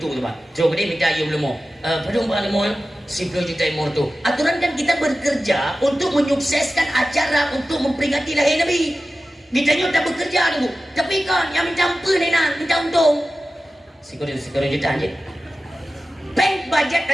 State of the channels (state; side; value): normal; both; correlation 0.94